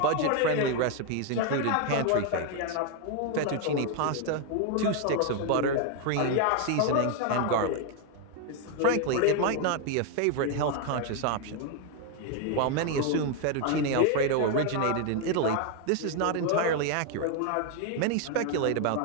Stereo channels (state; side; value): different; both; correlation 0.00